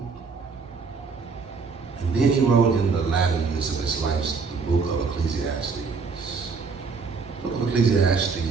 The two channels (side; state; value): left; quieter; 4.9 dB